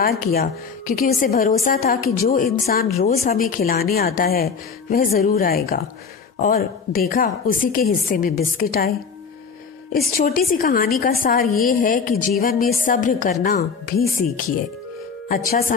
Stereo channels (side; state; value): right; quieter; 5.7 dB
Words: किया क्योंकि उसे भरोसा था कि जो इंसान रोज हमें खिलाने आता है वह जरूर आएगा, और देखा, उसी के हिस्से में बिस्किट आए। इस छोटी सी कहानी का सार ये है कि जीवन में सब्र करना भी सीखिए। अच्छा